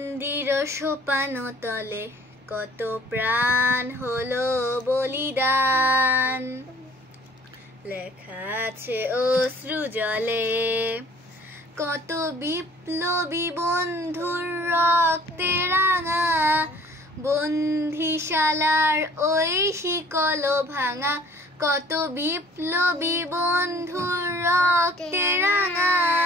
সোপান তলে কত প্রাণ হলো বলিদান, লেখা আছে অশ্রু জলে কত বিপ্লবী বন্ধুর রক্তে রাঙা, বন্দিশালার ওই শিকল ভাঙা, কত বিপ্লবী বন্ধুর রক্তে রাঙা,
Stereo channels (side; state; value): both; normal; correlation 0.53